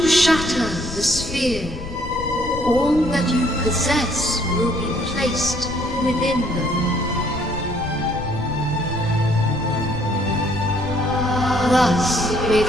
shatter the sphere, all that you possess will be placed within them. Thus, may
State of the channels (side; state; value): left; noise; rumble, 9 dB below the sound